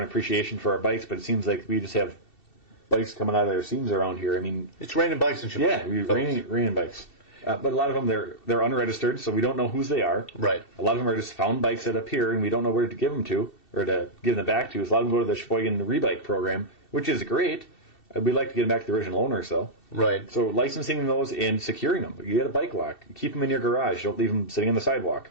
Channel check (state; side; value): late; right; 2.7 ms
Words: appreciation for our bikes, but it seems like we just have bikes coming out of their seams around here. I mean... It's raining bikes in Sheboygan. Yeah, raining bikes. But a lot of them, they're unregistered, so we don't know whose they are. Right. A lot of them are just found bikes that appear, and we don't know where to give them to, or to give them back to. So a lot of them go to the Sheboygan Rebike program, which is great. We'd like to get them back to the original owners, though. Right. So licensing those and securing them. You get a bike lock. Keep them in your garage. Don't leave them sitting on the sidewalk.